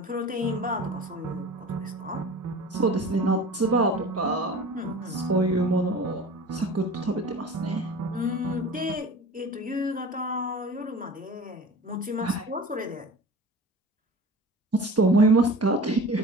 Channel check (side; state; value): both; normal; correlation 0.38